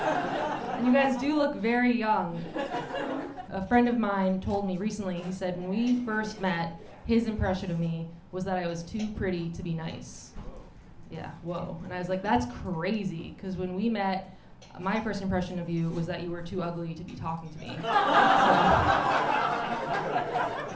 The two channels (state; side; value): identical; both; correlation 1.00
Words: you guys do look very young. A friend of mine told me recently, he said when we first met, his impression of me was that I was too pretty to be nice. Yeah, whoa. And I was like, that's crazy, because when we met, my first impression of you was that you were too ugly to be talking to me. So,